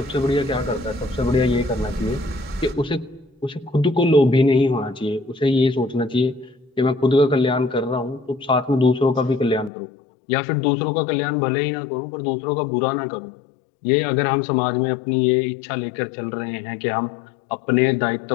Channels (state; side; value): drops out; right; at 9.7 s